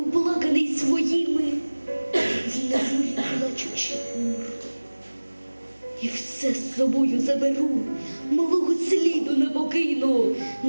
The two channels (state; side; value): inverted; both; correlation -1.00